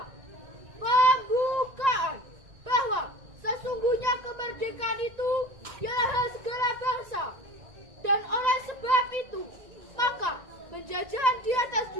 Pembukaan bahwa sesungguhnya kemerdekaan itu ialah hak segala bangsa, dan oleh sebab itu maka penjajahan di atas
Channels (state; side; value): late; left; 1.9 ms